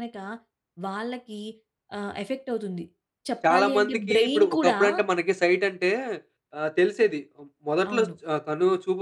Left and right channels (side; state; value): both; identical; correlation 1.00